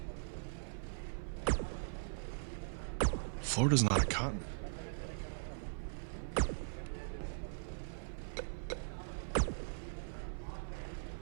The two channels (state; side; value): silent; left; 51 dB below the other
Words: Florida's not a continent.